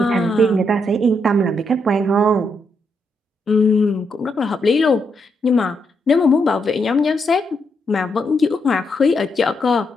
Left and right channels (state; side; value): normal; both; correlation 0.79